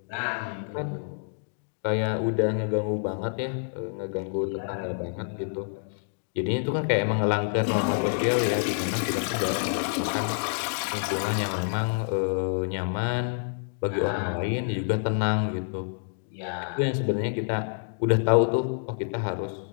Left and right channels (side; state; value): right; silent; digital silence